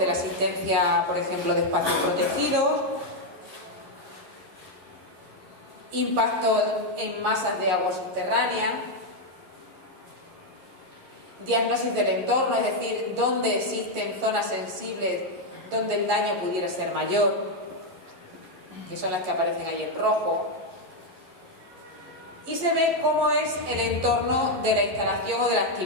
la existencia, por ejemplo, de espacios protegidos, impacto en masas de agua subterránea, diagnosis del entorno, es decir, dónde existen zonas sensibles donde el daño pudiera ser mayor, que son las que aparecen ahí en rojo. Y se ve cómo es el entorno de la instalación o de la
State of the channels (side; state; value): left; late; 11 ms